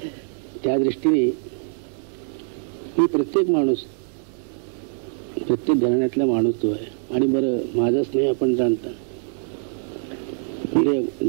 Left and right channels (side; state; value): left; silent; 59 dB below the other